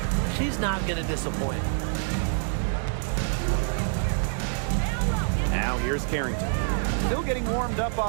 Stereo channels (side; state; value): left; silent; digital silence